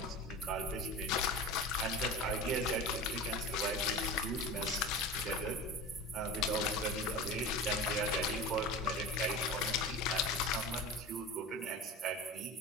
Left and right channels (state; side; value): normal; both; correlation 0.32